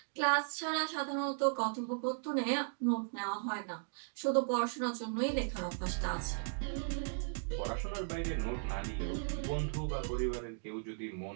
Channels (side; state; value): left; silent; digital silence